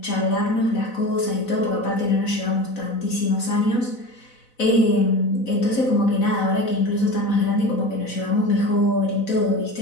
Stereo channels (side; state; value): right; late; 4.0 ms